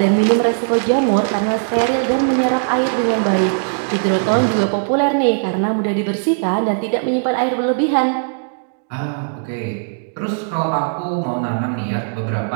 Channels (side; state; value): left; silent; digital silence